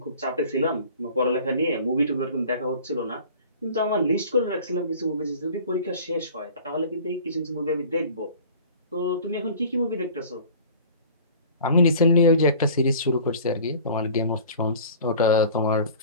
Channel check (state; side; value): inverted; both; correlation -0.44